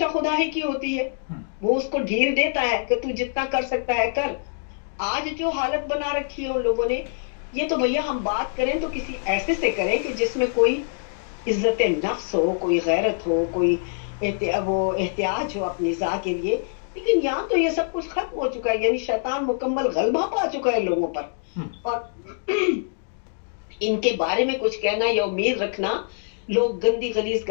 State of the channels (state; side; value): silent; right; digital silence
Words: खुदा ही की होती है, वो उसको ढील देता है कि तू जितना कर सकता है कर। आज जो हालत बना रखी है उन लोगों ने, ये तो भैया हम बात करें तो किसी ऐसे से करें कि जिसमें कोई इज्जत नफ्स हो, कोई गैरत हो, कोई वो एहतियाज हो अपनी ज़ा के लिए। लेकिन यहाँ तो ये सब कुछ खत्म हो चुका है, यानी शैतान मुकम्मल गलबा पा चुका है लोगों पर। और इनके बारे में कुछ कहना या उम्मीद रखना, लोग गंदी गलीज